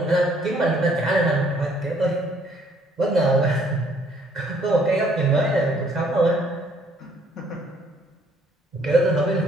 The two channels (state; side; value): normal; both; correlation 0.63